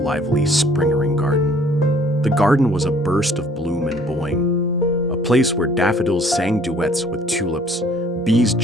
Springering Garden. The garden was a burst of bloom and bowing, a place where daffodils sang duets with tulips, bees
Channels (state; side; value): normal; both; correlation 0.57